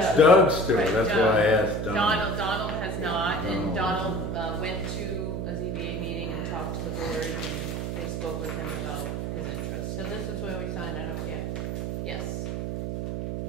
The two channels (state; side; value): noise; right; hum, 3 dB below the sound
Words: Doug's store, Right, that's Doug. why I asked Donald. Donald has not, and Donald. Donald went to a ZBA meeting and talked to the board, and they spoke with him about his interest. So this is where we sign it up here. Yes.